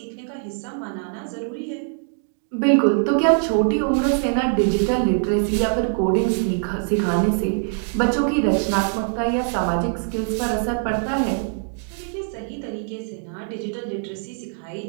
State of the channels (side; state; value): left; silent; 56 dB below the other